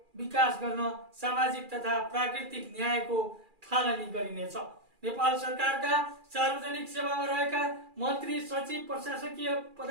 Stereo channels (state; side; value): late; left; 2.4 ms